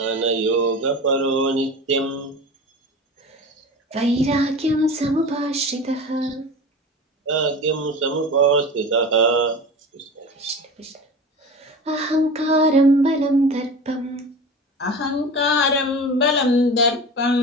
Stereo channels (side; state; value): both; normal; correlation 0.33